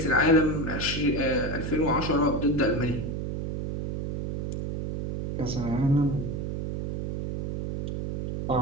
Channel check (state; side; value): noise; right; hum, 2 dB below the sound